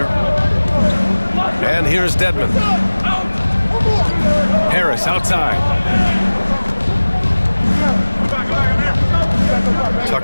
And here's Dedmon. Harris outside.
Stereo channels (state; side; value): inverted; both; correlation -1.00